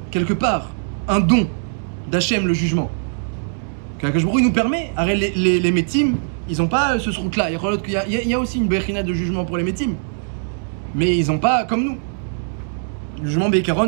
quelque part, un don d'Hachem, le jugement, qu'Akadosh Baruch Hu nous permet. Les métim, ils n'ont pas ce route-là. Il y a aussi une bechina de jugement pour les métim. Mais ils n'ont pas comme nous. Le jugement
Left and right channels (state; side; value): silent; left; 65 dB below the other